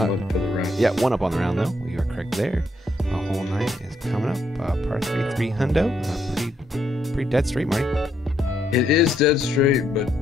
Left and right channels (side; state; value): both; normal; correlation 0.75